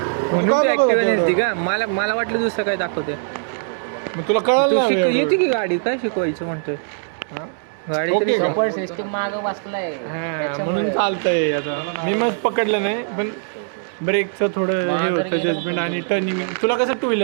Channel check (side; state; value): left; silent; 65 dB below the other